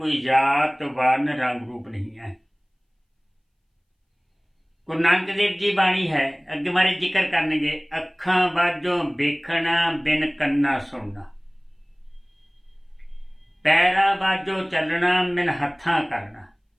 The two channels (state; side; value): identical; both; correlation 1.00